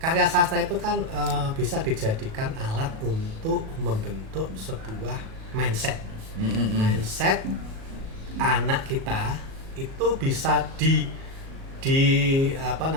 karya sastra itu kan bisa dijadikan alat untuk membentuk sebuah mindset. Mindset anak kita itu bisa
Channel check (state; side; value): late; left; 37 ms